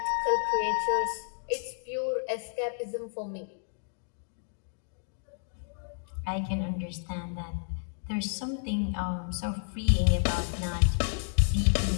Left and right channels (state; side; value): silent; right; digital silence